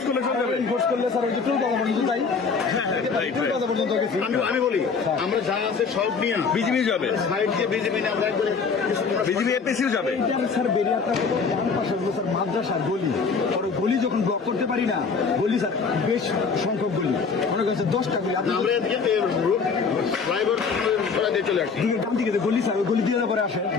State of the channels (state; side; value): quieter; right; 5.2 dB